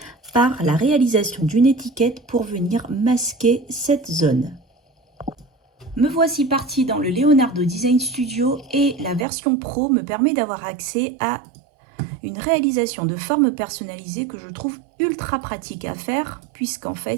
par la réalisation d'une étiquette pour venir masquer cette zone. Me voici partie dans le Leonardo Design Studio et la version Pro me permet d'avoir accès à une réalisation de forme personnalisée que je trouve ultra pratique à faire puisqu'en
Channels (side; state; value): left; drops out; at 9.2 s